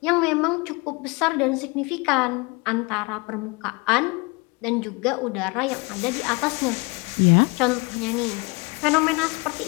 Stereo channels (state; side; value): quieter; right; 27.4 dB